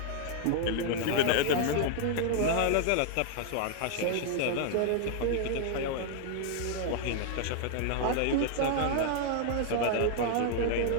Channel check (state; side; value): different; both; correlation 0.00